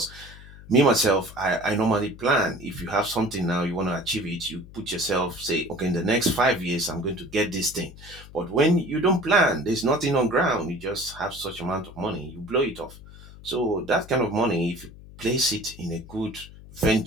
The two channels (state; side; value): noise; left; hum, 18 dB below the sound